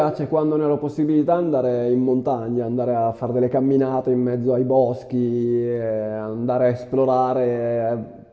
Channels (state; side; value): identical; both; correlation 1.00